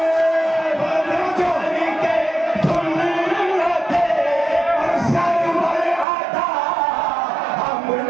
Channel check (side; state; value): left; drops out; at 6.1 s